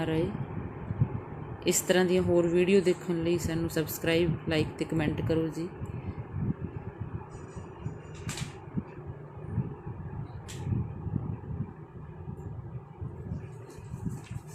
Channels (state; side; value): identical; both; correlation 1.00